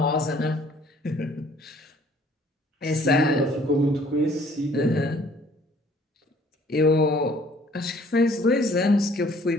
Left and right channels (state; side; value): normal; both; correlation 0.58